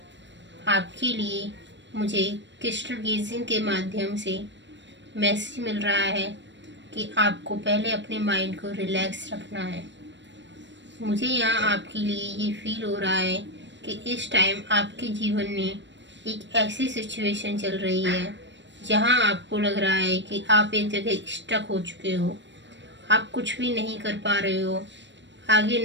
आपके लिए मुझे क्रिस्टल गेजिंग के माध्यम से मैसेज मिल रहा है कि आपको पहले अपने माइंड को रिलैक्स रखना है। मुझे यहाँ आपके लिए ये फील हो रहा है कि इस टाइम आपके जीवन में एक ऐसी सिचुएशन चल रही है जहाँ आपको लग रहा है कि आप एक जगह स्टक हो चुके हो, आप कुछ भी नहीं कर पा रहे हो, आगे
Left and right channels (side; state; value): left; late; 0.53 ms